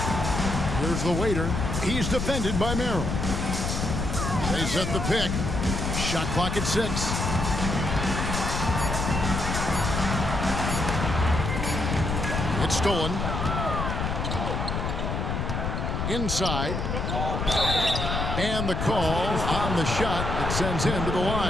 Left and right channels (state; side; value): noise; left; rumble, 2 dB below the sound